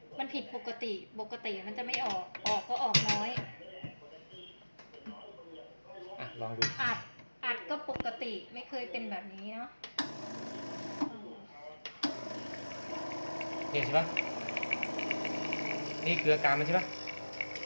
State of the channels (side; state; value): both; inverted; correlation -1.00